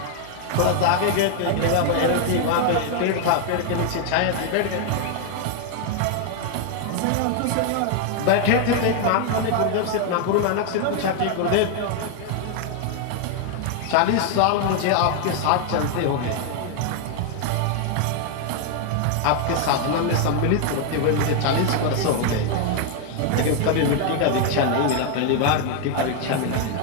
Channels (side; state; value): both; different; correlation 0.00